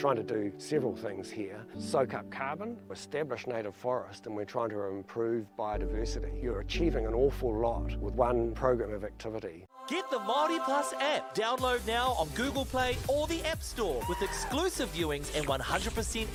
to do several things here. Soak up carbon, establish native forest, and we're trying to improve biodiversity. You're achieving an awful lot with one program of activity. Get the MāORI Plus app. Download now on Google Play or the App Store with exclusive viewings and 100%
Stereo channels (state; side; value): identical; both; correlation 1.00